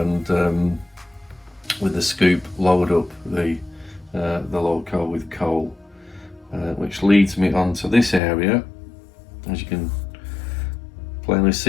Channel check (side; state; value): right; drops out; at 8.2 s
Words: with the scoop load up the loco with coal, which leads me onto this area. As you can plainly